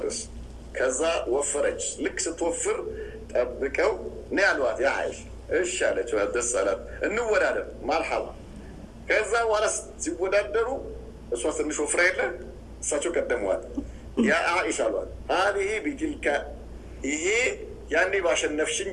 ከዛ ወፈረች። ልክ ስትወፍር ጠብቀው ነይ አልዋት። ያ አይሽ እሺ አለች፣ ደስ አላት። እንወዳደር ማርሃባ። ከዛ በኋላ ሲወዳደሩ እሷ ትንሽ ወፍራ የለ እሳቸው ቀደሟት። ያ አይሽ አልዋት። ሀዚህ ቢትልካ ይሄ ያኔ ባሸነፍሽኝ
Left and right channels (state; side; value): identical; both; correlation 1.00